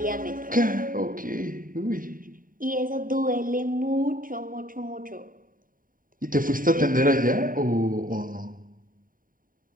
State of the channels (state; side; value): late; left; 0.40 ms